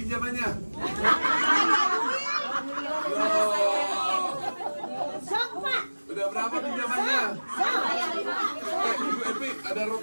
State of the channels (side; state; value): both; inverted; correlation -1.00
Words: Sok, Pak. Udah berapa pinjamannya? Ibu Epi, ada